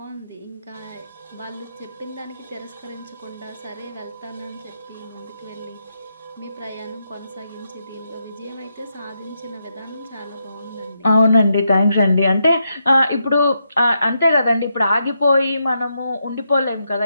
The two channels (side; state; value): both; inverted; correlation -0.82